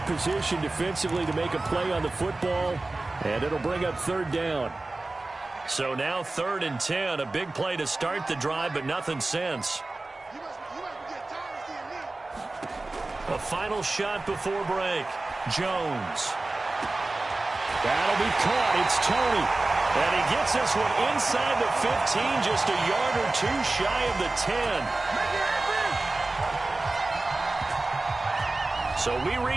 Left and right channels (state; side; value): quieter; left; 3.1 dB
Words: position defensively to make a play on the football, and it'll bring up third down. So now 3rd and 10, a big play to start the drive, but nothing since. A final shot before break. Jones. That'll be caught. It's Toney. And he gets this one inside the 15, just a yard or two shy of the 10. So we